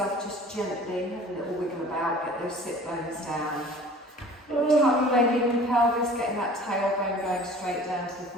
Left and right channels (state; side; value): normal; both; correlation 0.46